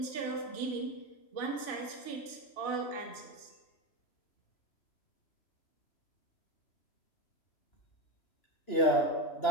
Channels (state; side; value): late; right; 2.6 ms